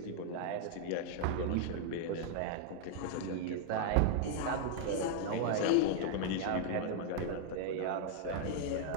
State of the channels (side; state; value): both; different; correlation 0.00